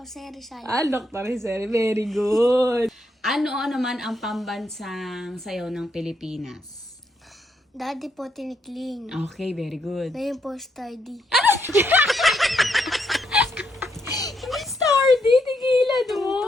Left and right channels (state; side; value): normal; both; correlation 0.77